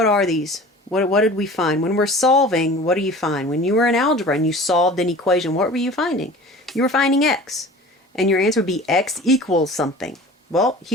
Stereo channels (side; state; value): both; normal; correlation 0.41